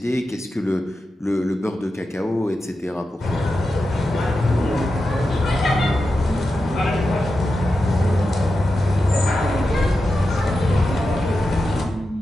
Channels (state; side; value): normal; both; correlation 0.90